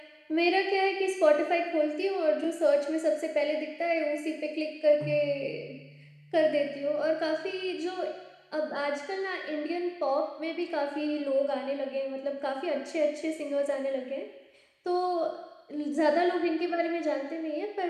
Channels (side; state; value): both; identical; correlation 1.00